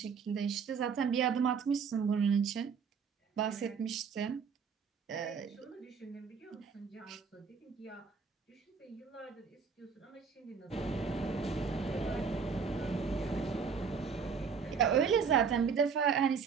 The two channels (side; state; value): left; quieter; 6.0 dB